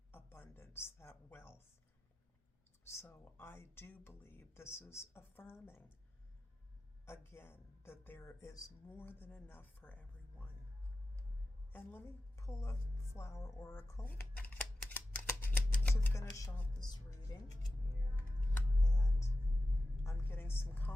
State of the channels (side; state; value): both; normal; correlation 0.93